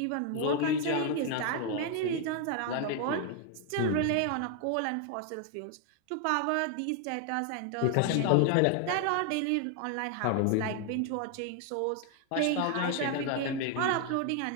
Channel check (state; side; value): different; both; correlation 0.00